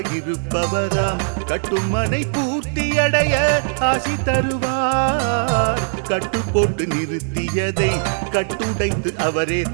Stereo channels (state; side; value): silent; left; digital silence